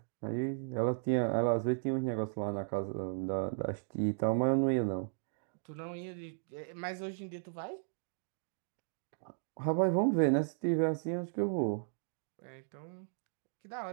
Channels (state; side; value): silent; left; digital silence